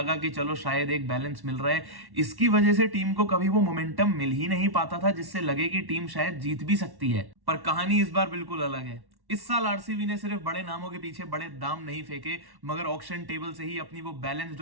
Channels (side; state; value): left; late; 1.1 ms